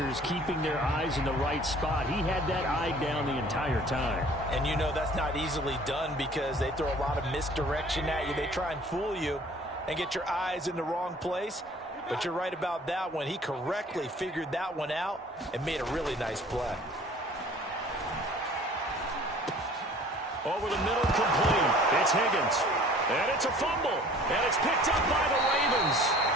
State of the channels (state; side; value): normal; both; correlation 0.51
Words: keeping their eyes in the right spot, he had that eye down the entire time. And you know that's not easily done because they throw a lot of misdirection at you. They try and fool you and get your eyes in the wrong place. But you're right about that one. He correctly figured that one out and made a really nice play. Over the middle, complete. It's Higgins. And it's a fumble. And it's picked up by the Ravens.